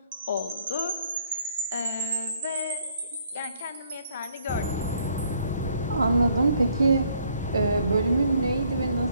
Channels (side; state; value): both; inverted; correlation -0.66